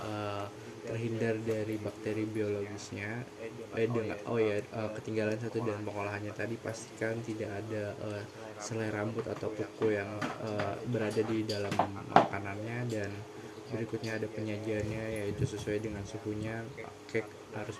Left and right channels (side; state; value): both; identical; correlation 1.00